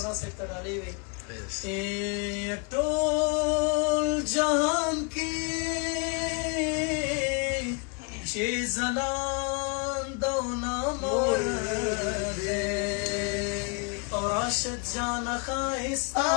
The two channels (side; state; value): right; quieter; 35.9 dB